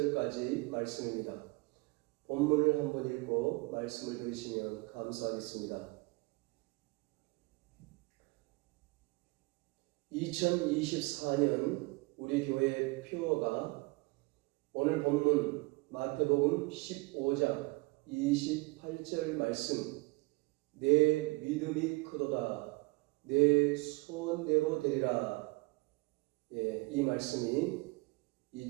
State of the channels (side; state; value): left; quieter; 25.3 dB